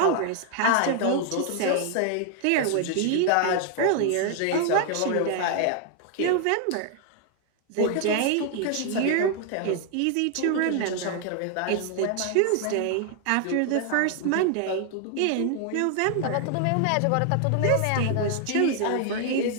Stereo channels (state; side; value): different; both; correlation 0.00